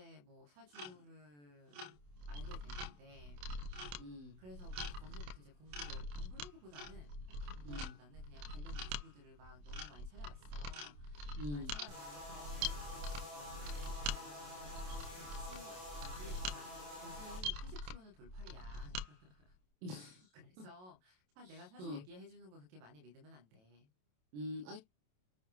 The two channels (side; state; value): left; late; 27 ms